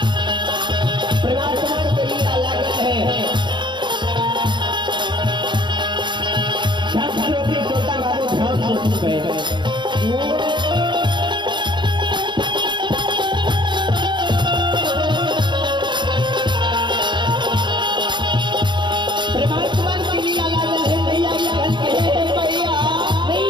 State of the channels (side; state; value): left; late; 0.23 ms